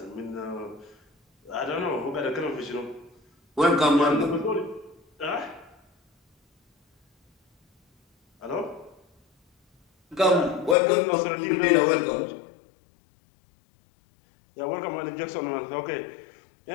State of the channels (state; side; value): drops out; right; at 10.8 s